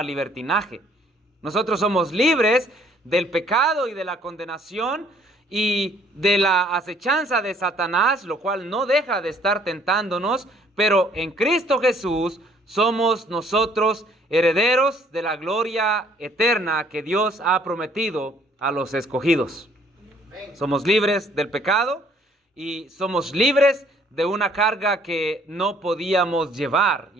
libertinaje. Nosotros somos libres del pecado y de la condenación y de la acechanza de Satanás, lo cual no deja de estar tentándonos, pero en Cristo Jesús somos nosotros herederos de la gloria eterna que Dios ha prometido a los escogidos. Somos libres del pecado y somos libres de una carga que no podíamos llevar,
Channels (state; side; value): normal; both; correlation 0.61